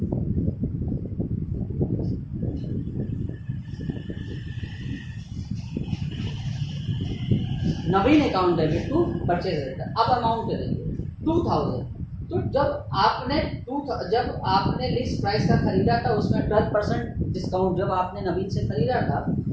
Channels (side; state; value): both; identical; correlation 1.00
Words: Naveen account debit to purchase return. अब अमाउंट देंगे 2000। तो जब आपने लिस्ट प्राइस का खरीदा था उसमें 12% डिस्काउंट, जब आपने नवीन से खरीदा था